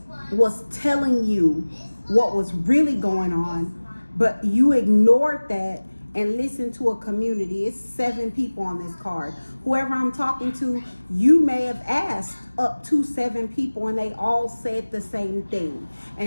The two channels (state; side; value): inverted; both; correlation -1.00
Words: was telling you what was really going on, but you ignored that and listened to a community. It's 7 people on this card. Whoever I'm talking to, you may have asked up to 7 people and they all said the same thing.